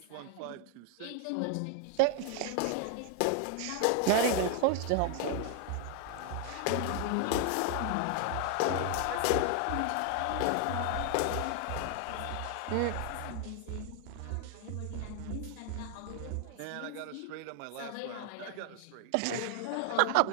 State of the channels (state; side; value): different; both; correlation 0.00